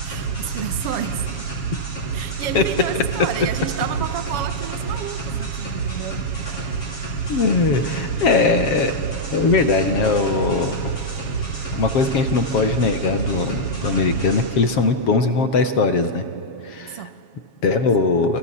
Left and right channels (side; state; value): right; late; 7.1 ms